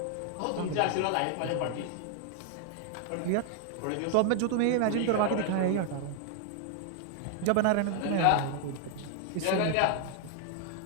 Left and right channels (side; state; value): both; different; correlation 0.00